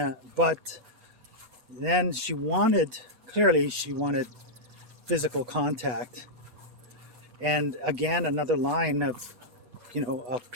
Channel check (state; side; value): late; left; 4.2 ms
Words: But then she wanted physical contact, and again, another line of